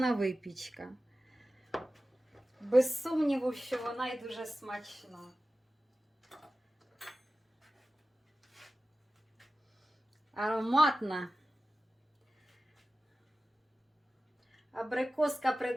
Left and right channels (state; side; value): normal; both; correlation 0.95